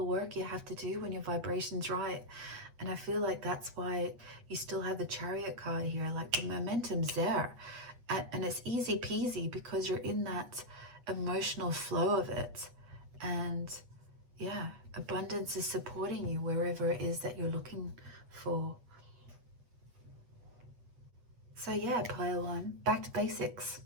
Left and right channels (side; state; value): left; late; 8.3 ms